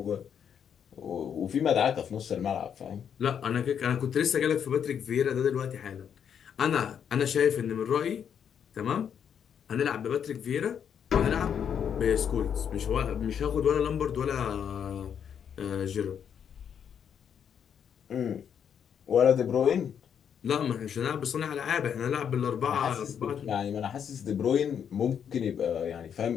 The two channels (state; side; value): quieter; right; 8.1 dB